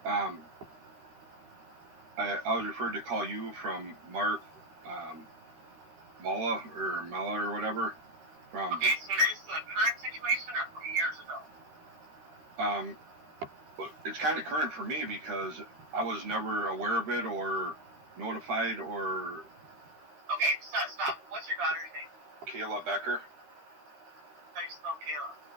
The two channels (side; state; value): left; late; 13 ms